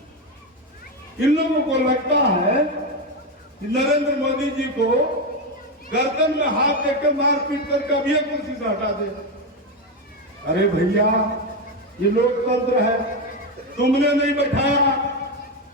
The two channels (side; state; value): both; normal; correlation 0.11